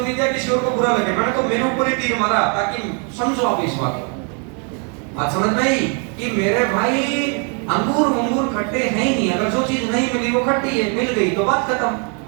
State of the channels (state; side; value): quieter; left; 38.2 dB